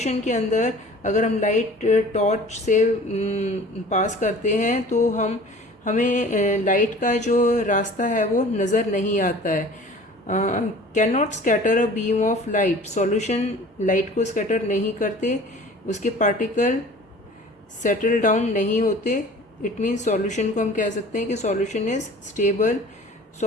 के अंदर अगर हम लाइट टॉर्च से पास करते हैं तो हमें लाइट का जो रास्ता है वो नज़र नहीं आता है। Can not scatter a beam of light, solution light को स्कैटर नहीं करते, उसके पार्टिकल सेटल डाउन नहीं होते। इट मीन्स सॉल्यूशन को हम कह सकते हैं कि solution is stable.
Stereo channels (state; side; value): normal; both; correlation 0.45